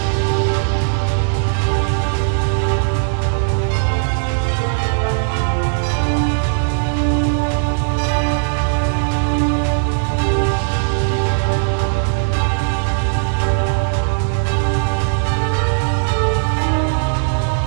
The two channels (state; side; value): silent; left; digital silence